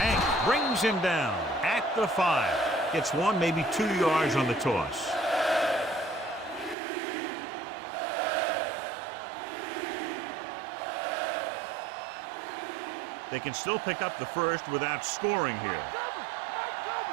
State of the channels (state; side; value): drops out; left; at 6.8 s